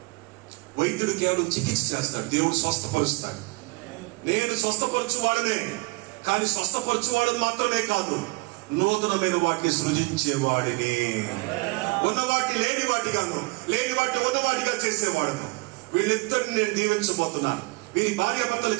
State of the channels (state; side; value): quieter; left; 25.3 dB